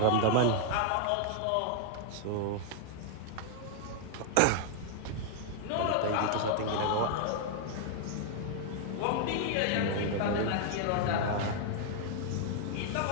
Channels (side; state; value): both; different; correlation 0.00